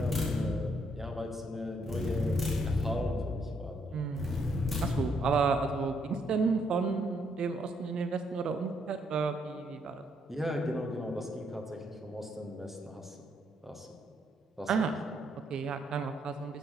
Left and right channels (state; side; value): normal; both; correlation 0.73